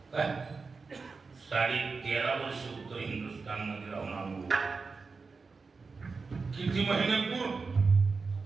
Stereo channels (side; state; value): left; quieter; 4.5 dB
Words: 13.5 वर्ष उत्तर हिंदुस्थान मध्ये राहून आलो. किती महिने पूर?